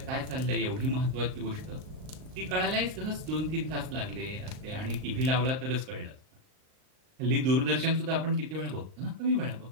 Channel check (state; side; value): late; left; 39 ms